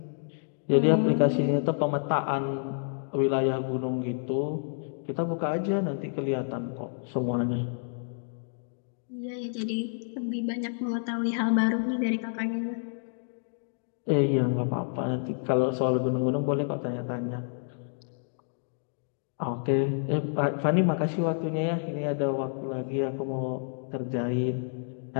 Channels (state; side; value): silent; right; digital silence